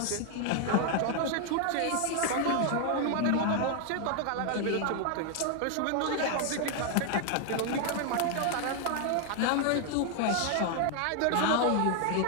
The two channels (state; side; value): different; both; correlation 0.00